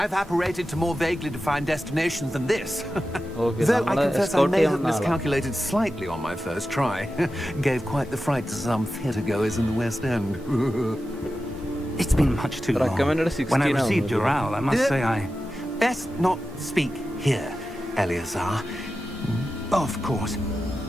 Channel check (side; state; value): both; normal; correlation 0.92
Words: apparated to more vaguely defined destinations than this. Okay, Though I confess I may have escort miscalculated slightly on my first try. Gave quite the fright to some theatre goers in the West End. It's been much too long. Recommended 16 When I received your owl, I must say I... Best not speak here, Eleazar. Of course.